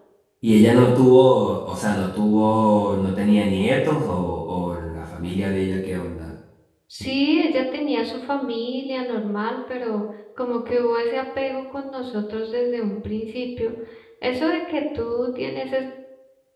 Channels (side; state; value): both; identical; correlation 1.00